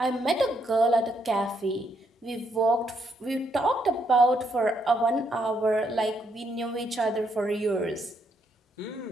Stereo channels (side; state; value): both; normal; correlation 0.75